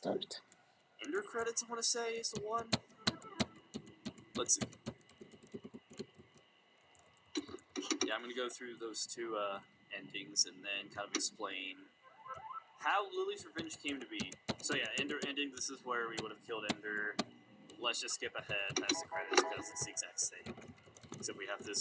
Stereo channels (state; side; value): identical; both; correlation 1.00